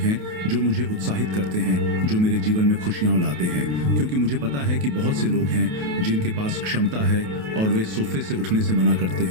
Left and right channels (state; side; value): late; left; 28 ms